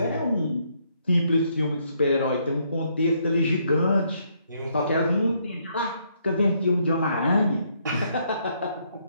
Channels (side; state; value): both; inverted; correlation -0.72